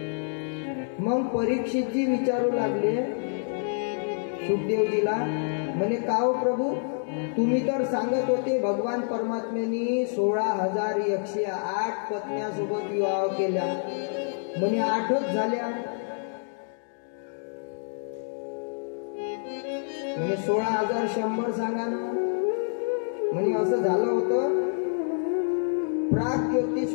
मग परीक्षितजी विचारू लागले सुखदेवजीला, म्हणे का हो प्रभू, तुम्ही तर सांगत होते भगवान परमात्म्यांनी 16,108 पत्न्यासोबत विवाह केला, म्हणे 8च झाल्या. म्हणे 16,100 सांगा ना. म्हणे असं झालं होतं,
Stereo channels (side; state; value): right; silent; digital silence